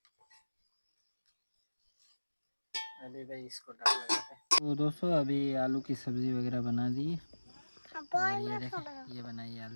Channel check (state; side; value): inverted; both; correlation -1.00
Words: अभी भाई इसको डाल लगाते हैं। तो दोस्तों अभी आलू की सब्जी वगैरह बना दी है। और ये देखें, ये बनाई